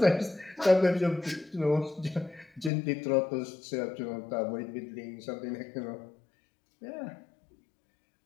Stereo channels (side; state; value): right; drops out; at 2.7 s